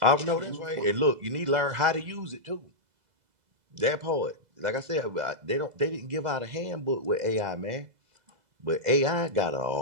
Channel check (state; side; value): late; left; 2.0 ms